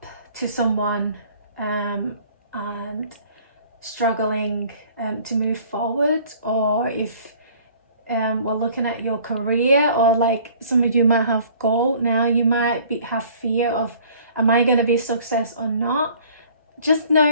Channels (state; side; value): inverted; both; correlation -0.53